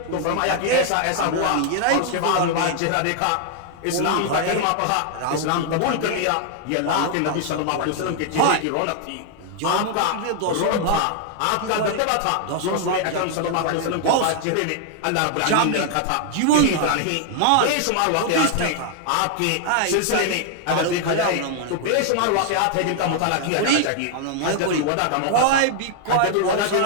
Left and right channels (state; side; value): different; both; correlation 0.00